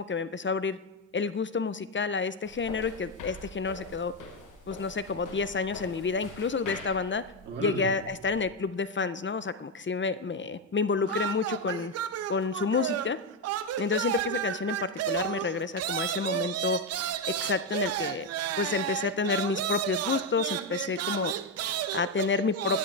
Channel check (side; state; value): both; normal; correlation 0.07